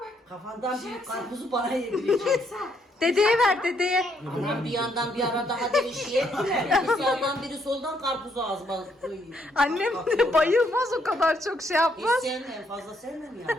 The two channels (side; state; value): both; normal; correlation 0.73